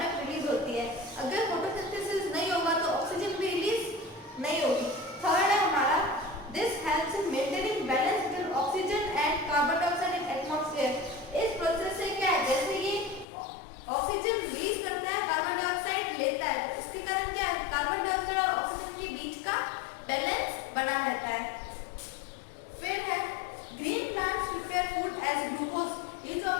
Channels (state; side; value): drops out; right; at 13.2 s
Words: release होती है. अगर फोटोसिंथेसिस नहीं होगा तो ऑक्सीजन भी रिलीज नहीं होगी. थर्ड है हमारा, this helps in maintaining balance between oxygen and carbon dioxide in atmosphere. इस प्रोसेस से क्या है, जैसे ये ऑक्सीजन रिलीज करता है, कार्बन डाइऑक्साइड लेता है, तो इसके कारण क्या है, कार्बन डाइऑक्साइड और ऑक्सीजन के बीच का बैलेंस बना रहता है. फिर है, green plants prepare food as glucose. ये जो